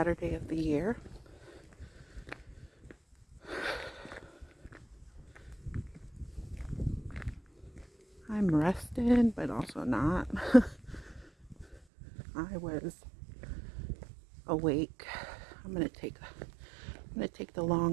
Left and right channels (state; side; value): drops out; left; at 11.8 s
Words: of the year. I'm rested, but also not. I was awake. I'm gonna take the